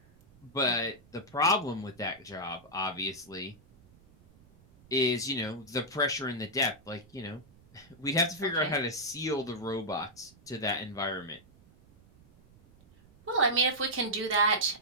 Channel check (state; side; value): noise; right; rumble, 27 dB below the sound